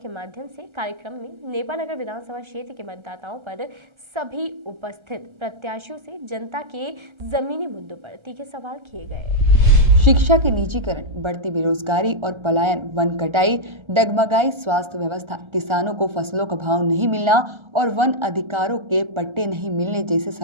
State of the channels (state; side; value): late; left; 1.3 ms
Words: माध्यम से कार्यक्रम में नेपानगर विधानसभा क्षेत्र के मतदाताओं पर सभी उपस्थित प्रत्याशियों से जनता के जमीनी मुद्दों पर तीखे सवाल किए गए। शिक्षा के निजीकरण, बढ़ती बेरोजगारी और पलायन, वन कटाई, डगमगाई स्वास्थ्य व्यवस्था, किसानों को फसलों का भाव नहीं मिलना और वन अधिकारों के पट्टे नहीं मिलने जैसे